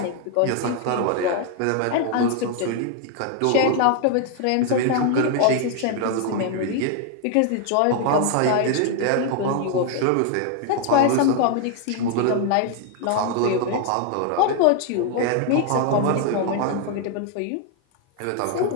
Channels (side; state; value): both; different; correlation 0.00